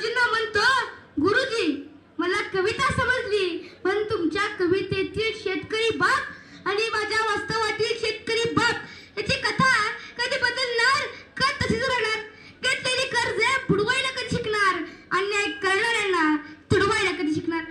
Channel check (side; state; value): both; identical; correlation 1.00